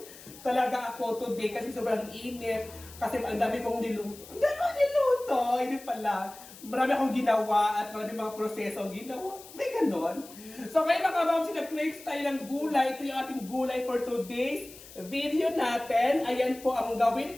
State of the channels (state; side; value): noise; left; hiss, 18 dB below the sound